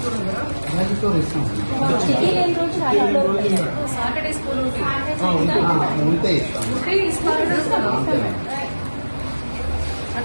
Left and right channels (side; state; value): both; inverted; correlation -1.00